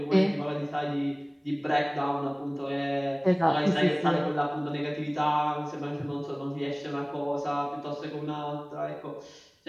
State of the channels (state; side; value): identical; both; correlation 1.00